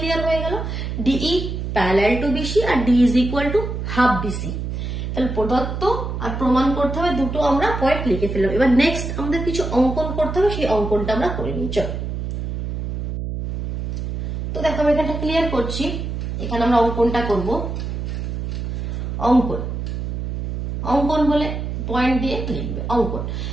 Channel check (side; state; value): right; noise; hum, 4 dB below the sound